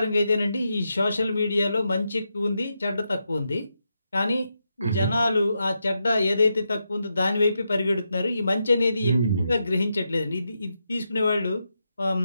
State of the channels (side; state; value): both; inverted; correlation -0.85